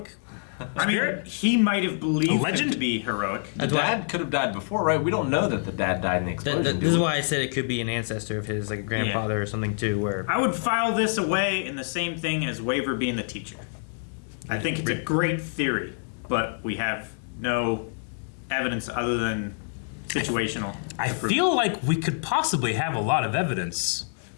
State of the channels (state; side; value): silent; right; 59 dB below the other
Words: I mean, spirit? he might have believed him legend? to be heroic. The dad could have died before, right? We don't know that the dad died in the explosion. do This is we? why I said it could be an ancestor of his, like a grandfather or something too. Where I would file this away in the same thing as Waver being the teacher. I think it's a great theory, but we have no evidence other than situational. I feel like we could possibly have a lot of evidence.